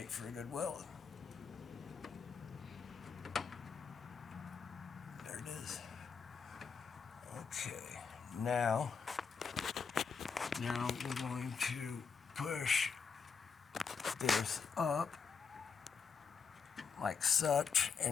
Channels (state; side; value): quieter; right; 5.8 dB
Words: for a good weld. There it is. Okay. Now we're going to push this up like such,